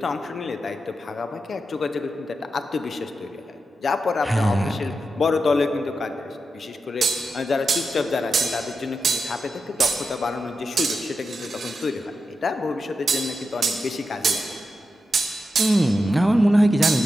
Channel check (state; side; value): normal; both; correlation 0.88